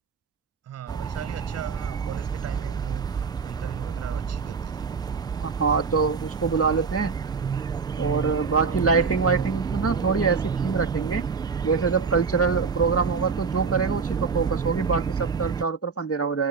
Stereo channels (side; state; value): left; quieter; 5.2 dB